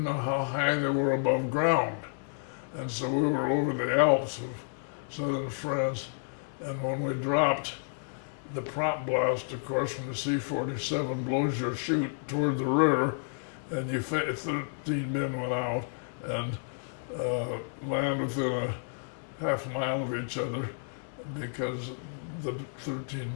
know how high they were above ground. And so we were over the Alps of southern France, and when we dropped, the prop blast, of course, from the C-47 blows your chute toward the rear, and 13 men went out and land within a half mile of each other because the 13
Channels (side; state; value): right; silent; 57 dB below the other